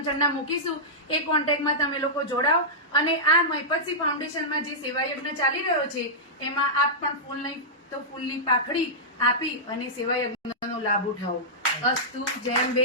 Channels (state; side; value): normal; both; correlation -0.13